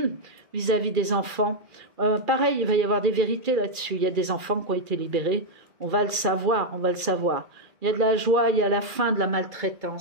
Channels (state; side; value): late; left; 2.4 ms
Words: vis-à-vis des enfants. Pareil, il va y avoir des vérités là-dessus. Il y a des enfants qui ont été libérés. On va le savoir, on va le savoir. Il y a de la joie, il y a la fin de la